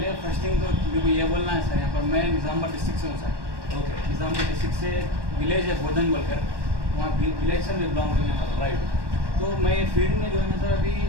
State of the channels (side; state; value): left; late; 1.2 ms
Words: फर्स्ट थिंग तो मेरे को ये बोलना है सर, यहाँ पर मैं निज़ामबाद डिस्ट्रिक्ट से हूँ सर। ओके। निज़ामबाद डिस्ट्रिक्ट से विलेज है बोधन बोलकर, वहाँ विलेज से मैं बिलोंग करने वाला हूँ, राइट। तो मैं फील्ड में जो है ना सर अभी